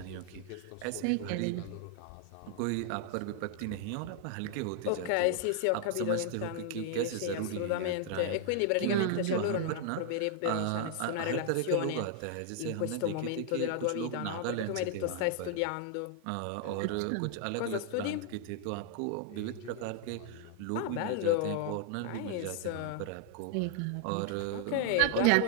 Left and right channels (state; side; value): different; both; correlation 0.00